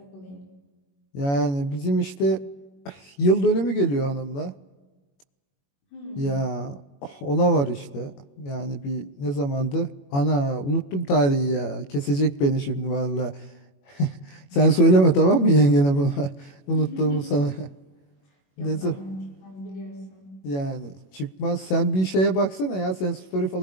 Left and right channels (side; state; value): right; late; 21 ms